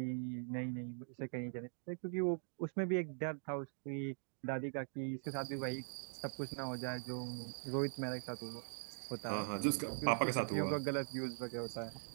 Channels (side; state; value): left; silent; digital silence